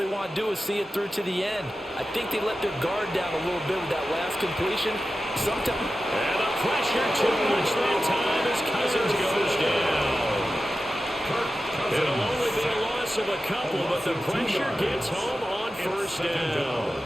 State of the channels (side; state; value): both; normal; correlation 0.93